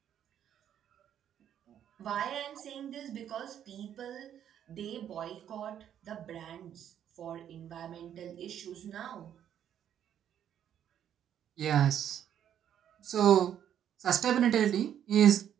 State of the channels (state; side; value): quieter; left; 9.8 dB